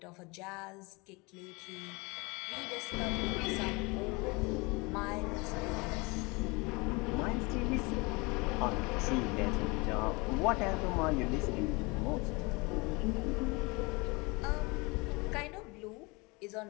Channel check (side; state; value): right; quieter; 26.8 dB